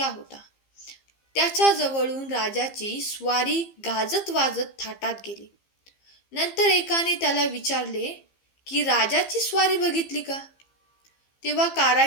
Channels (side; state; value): right; late; 15 ms